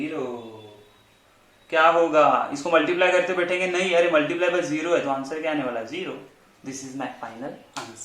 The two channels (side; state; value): both; identical; correlation 1.00